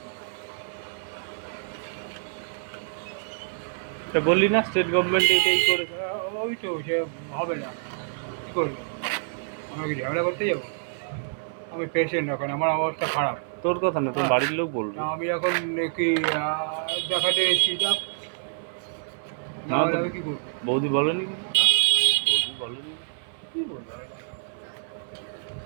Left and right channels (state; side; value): silent; left; 60 dB below the other